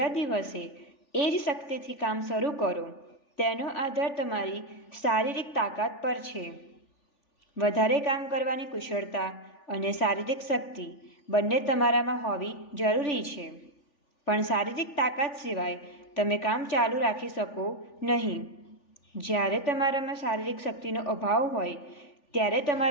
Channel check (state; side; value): late; right; 3.4 ms